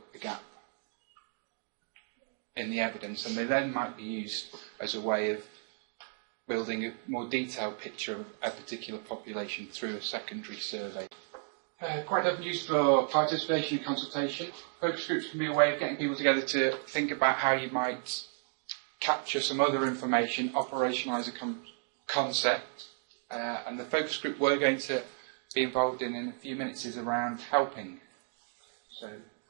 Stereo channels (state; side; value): silent; left; 56 dB below the other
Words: the gap in the evidence, and they then might be used as a way of building a more detailed picture of a particular population through a secondary survey. Quite often used for participation and consultation. Focus groups can be a way of getting people together to think about how you might capture some other information, operationalise a concept, and the focus group we're going to be involved in a few minutes is around helping. So,